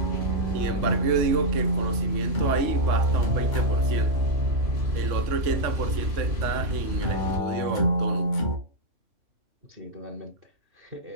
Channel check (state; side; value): late; left; 3.5 ms